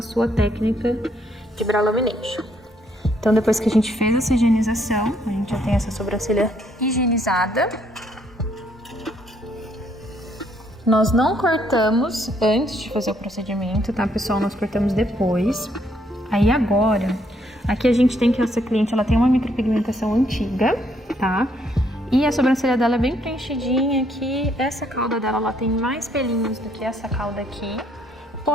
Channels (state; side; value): normal; both; correlation 0.70